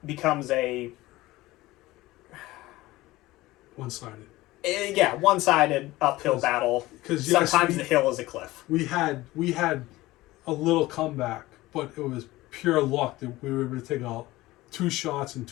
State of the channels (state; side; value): quieter; right; 18.4 dB